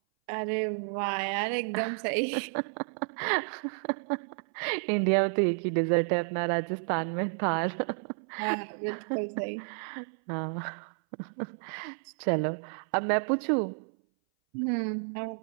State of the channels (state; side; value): silent; left; 57 dB below the other